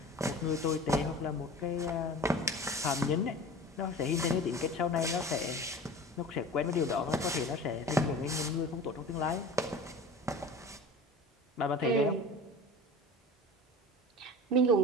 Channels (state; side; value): normal; both; correlation 0.37